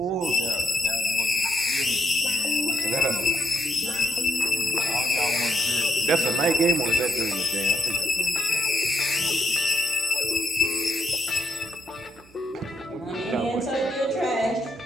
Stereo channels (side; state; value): both; normal; correlation 0.78